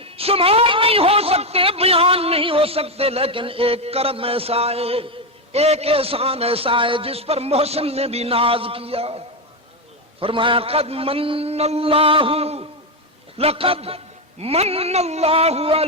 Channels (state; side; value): normal; both; correlation 0.08